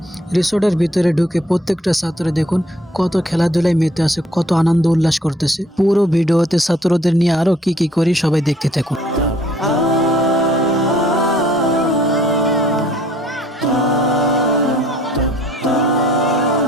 রিসোর্টের ভিতরে ঢুকে প্রত্যেকটা ছাত্র দেখুন কত খেলাধুলায় মেতে আছে, কত আনন্দ উল্লাস করতেছে। পুরো ভিডিওতে ছাত্রদের নিয়ে আরো কি কি করি সবাই দেখতে থাকুন।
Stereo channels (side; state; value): both; normal; correlation 0.60